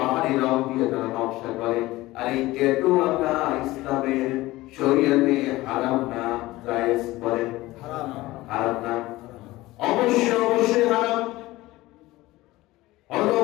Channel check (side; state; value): right; quieter; 18.5 dB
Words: রং দিয়ে তারা নকশা করে। আর এই ট্যাটু আঁকা ইসলামের শরীয়তে হারাম না জায়েজ? বলেন হারাম না? অবশ্যই অবশ্যই হারাম।